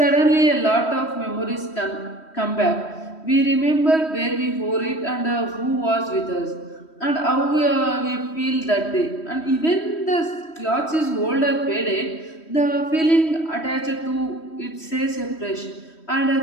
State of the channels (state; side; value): late; right; 3.1 ms